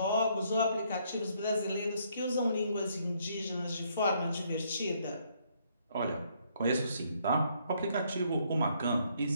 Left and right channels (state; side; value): inverted; both; correlation -0.69